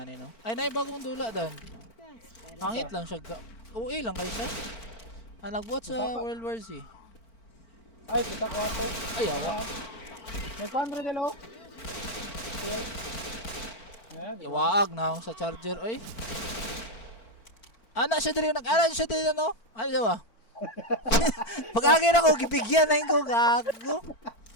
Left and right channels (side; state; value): right; late; 4.4 ms